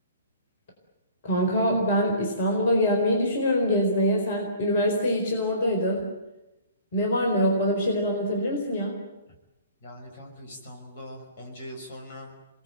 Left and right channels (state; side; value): inverted; both; correlation -0.48